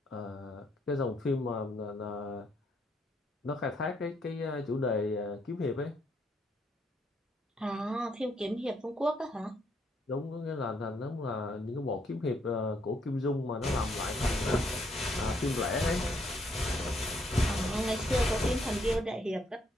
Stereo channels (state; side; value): normal; both; correlation 0.72